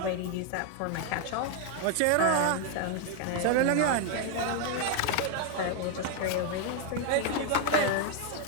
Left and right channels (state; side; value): different; both; correlation 0.01